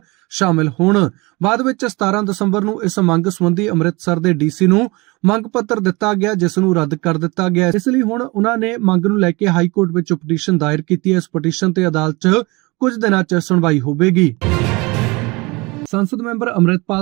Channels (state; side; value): quieter; left; 24.8 dB